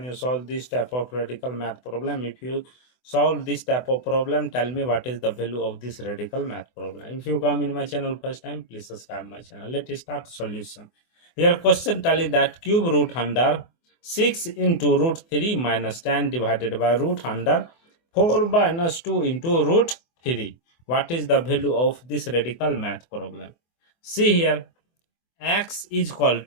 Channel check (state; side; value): late; right; 24 ms